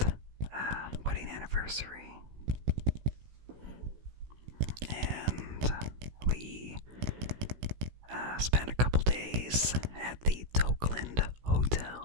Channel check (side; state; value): left; late; 16 ms